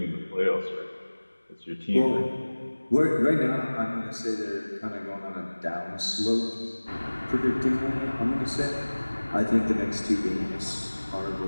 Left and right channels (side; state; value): both; inverted; correlation -1.00